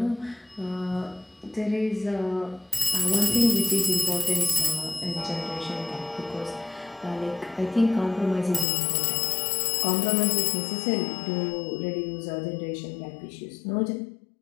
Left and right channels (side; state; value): right; drops out; at 8.7 s